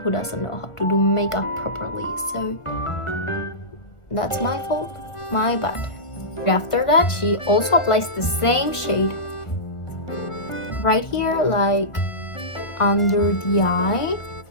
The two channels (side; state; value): right; late; 1.4 ms